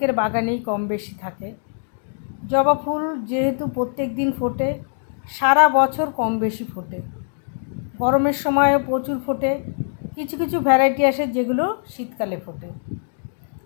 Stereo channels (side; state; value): right; silent; digital silence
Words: বাগানেই কম বেশি থাকে। জবা ফুল যেহেতু প্রত্যেক দিন ফোটে, সারা বছর কম বেশি ফোটে। গরমের সময়ও প্রচুর ফোটে, কিছু কিছু ভ্যারাইটি আসে যেগুলো শীতকালে ফোটে।